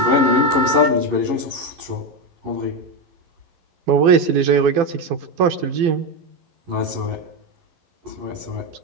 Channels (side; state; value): left; late; 12 ms